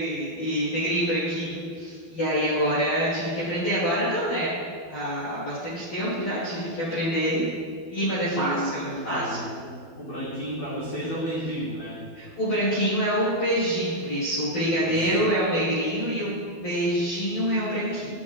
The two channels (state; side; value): late; right; 12 ms